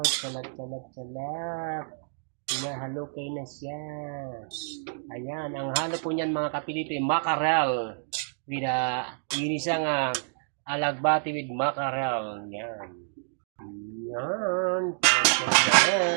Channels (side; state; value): left; silent; digital silence